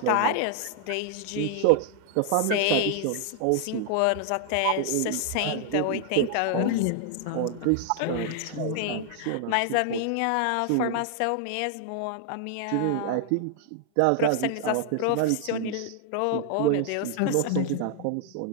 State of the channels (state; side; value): different; both; correlation 0.00